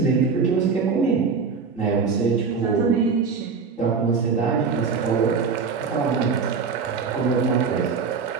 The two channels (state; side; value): quieter; left; 5.3 dB